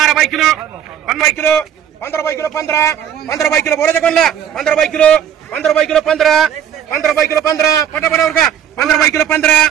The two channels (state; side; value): quieter; left; 9.3 dB